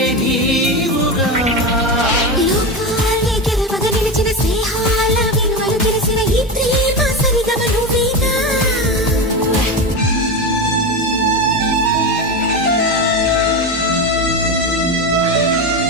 నీవుగా లోకాలే గెలవగ నిలిచిన స్నేహాల విలువలు తెలిసిన ఈ ప్రేమ సరిగమ నువ్వేగా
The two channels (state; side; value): normal; both; correlation 0.18